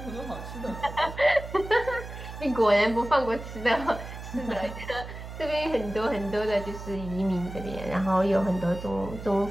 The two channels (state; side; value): noise; right; hum, 11 dB below the sound